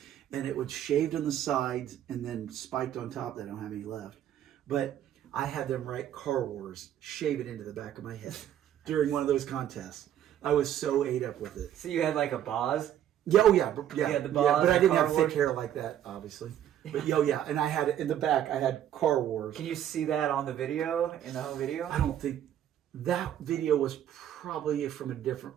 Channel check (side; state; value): left; quieter; 10.9 dB